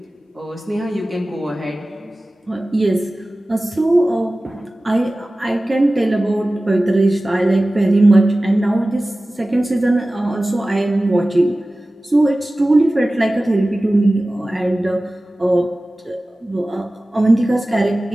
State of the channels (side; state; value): both; normal; correlation 0.97